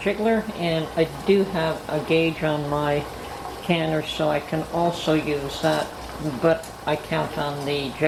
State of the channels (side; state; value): both; identical; correlation 1.00